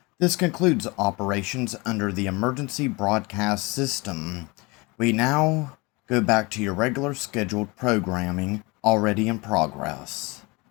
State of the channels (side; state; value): right; quieter; 25.6 dB